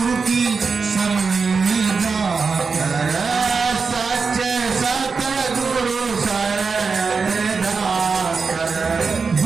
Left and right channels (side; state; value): left; quieter; 4.9 dB